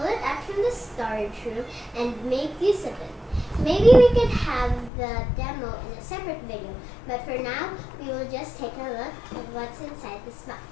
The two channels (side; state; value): right; drops out; at 4.9 s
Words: it out from the storage room and make use of it. Maybe we could have the demo in a separate video, but for now, we will just take a look at what's inside this box.